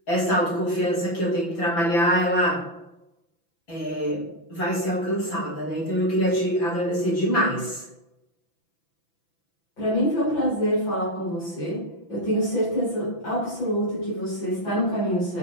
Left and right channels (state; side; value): late; right; 6.0 ms